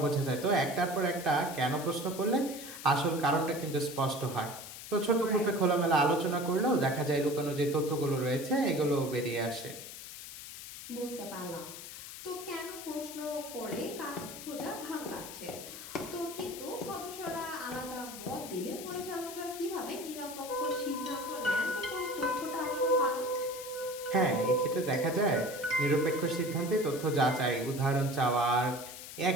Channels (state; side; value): noise; left; hiss, 11 dB below the sound